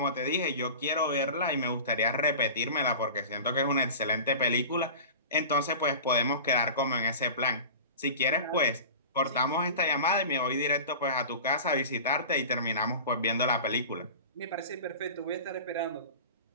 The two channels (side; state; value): both; inverted; correlation -0.35